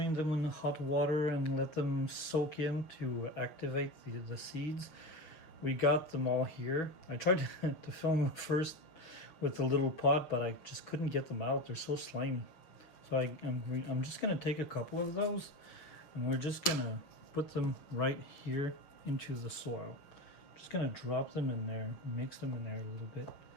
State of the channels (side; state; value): right; late; 6.2 ms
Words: them in hot water and let them soak in to activate the seeds, we got them all here. I tried to film first with the little pot, but I just couldn't get them out. They're so slimy. So I'm just going to take a couple of those, and we're just going to put them right here into the soil. Just going to drop them in there, mix them in there a little bit.